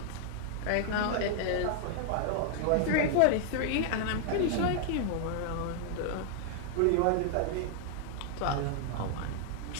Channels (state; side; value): different; both; correlation -0.01